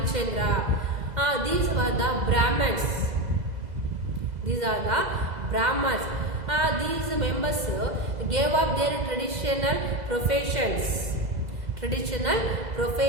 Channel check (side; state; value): left; late; 2.0 ms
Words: These were the Brahmins. These are the Brahmins. These members gave up their traditional professions